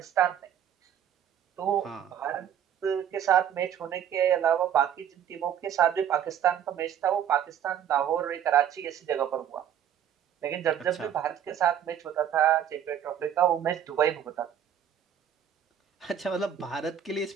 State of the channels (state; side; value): quieter; left; 9.5 dB